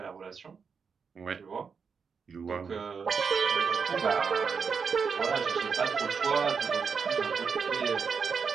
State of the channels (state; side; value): quieter; left; 5.8 dB